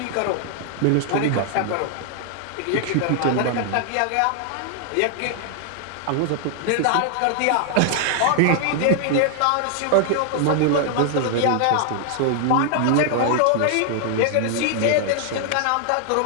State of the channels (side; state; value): both; different; correlation 0.00